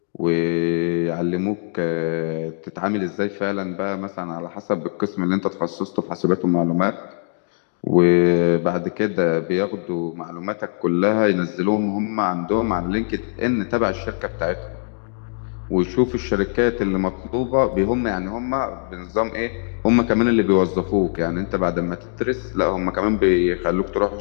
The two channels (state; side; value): silent; right; 64 dB below the other